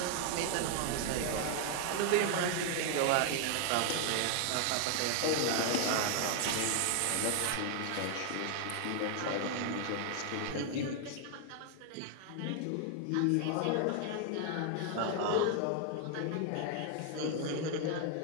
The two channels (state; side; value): different; both; correlation 0.00